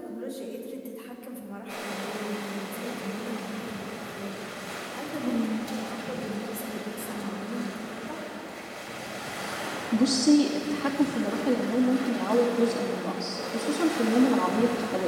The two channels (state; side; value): identical; both; correlation 1.00